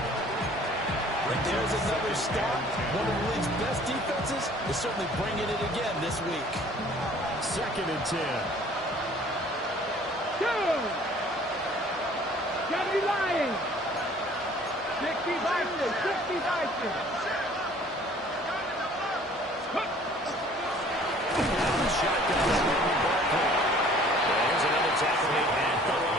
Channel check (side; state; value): both; normal; correlation 0.53